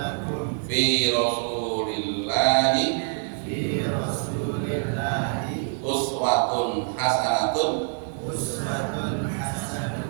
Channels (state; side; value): silent; left; 59 dB below the other